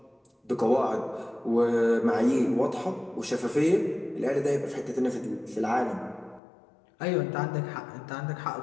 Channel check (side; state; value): right; drops out; at 6.4 s